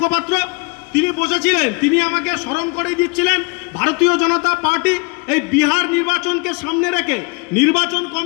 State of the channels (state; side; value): quieter; right; 30.5 dB